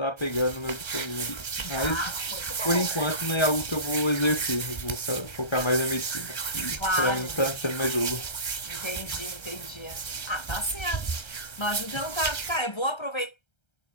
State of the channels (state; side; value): late; right; 1.3 ms